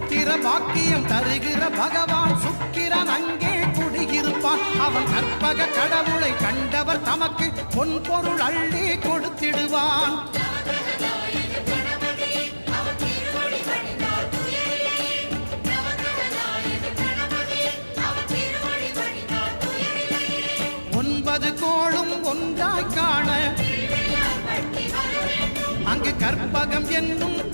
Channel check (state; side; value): inverted; both; correlation -1.00